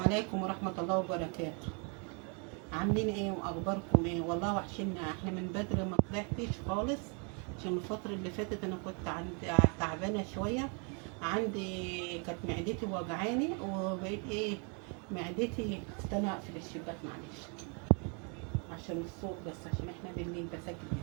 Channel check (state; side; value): quieter; left; 36.4 dB